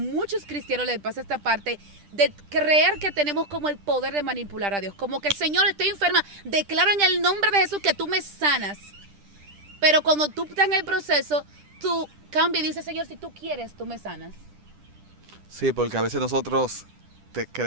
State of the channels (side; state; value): left; late; 10 ms